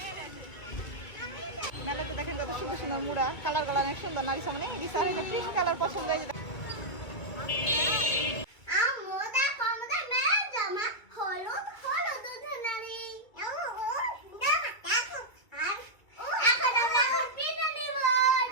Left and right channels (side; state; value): right; late; 2.3 ms